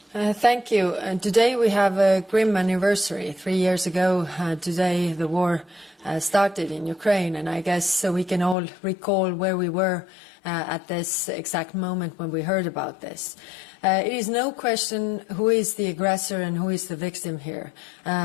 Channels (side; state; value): right; drops out; at 8.6 s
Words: Thank you. Today we have a grim anniversary. 3 years ago today the war started in Ukraine, and I guess we can all recall where we were at this exact moment when we heard about this. It is no question who is the aggressor and who is the victim here.